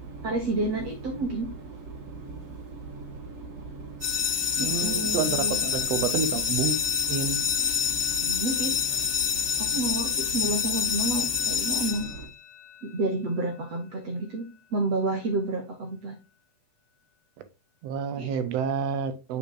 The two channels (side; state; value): left; late; 8.0 ms